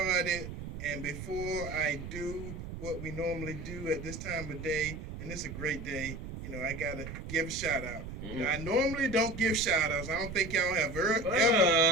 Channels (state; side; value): noise; right; rumble, 9 dB below the sound